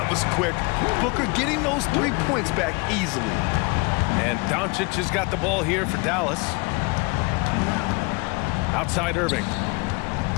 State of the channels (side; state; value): right; quieter; 27.5 dB